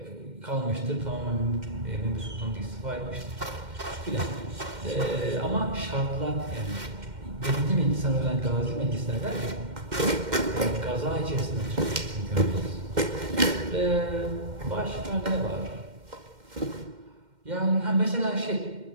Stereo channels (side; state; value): left; late; 2.1 ms